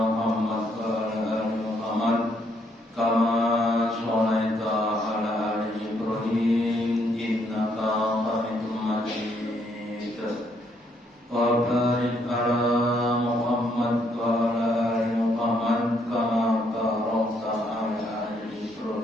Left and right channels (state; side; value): normal; both; correlation 0.72